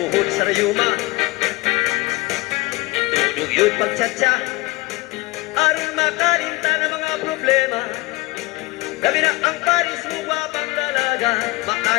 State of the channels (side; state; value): right; quieter; 21.9 dB